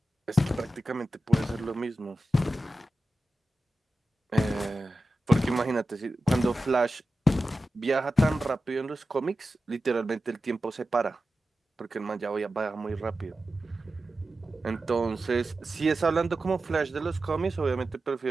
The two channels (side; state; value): both; normal; correlation 0.93